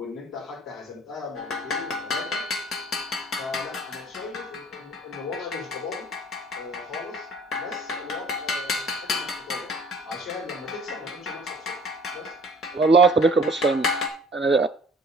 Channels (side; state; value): both; normal; correlation 0.52